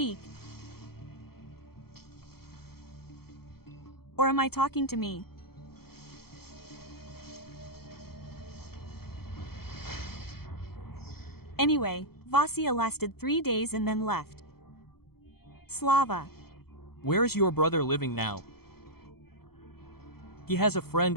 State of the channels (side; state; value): right; late; 0.95 ms